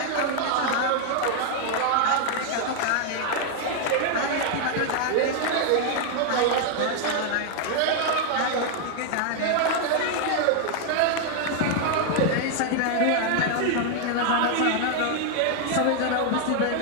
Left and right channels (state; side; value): different; both; correlation 0.00